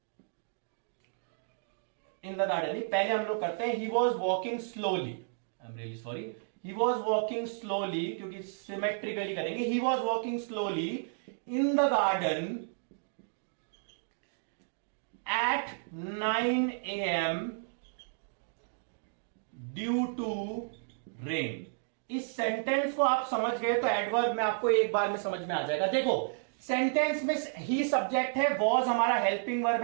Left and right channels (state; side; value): silent; left; digital silence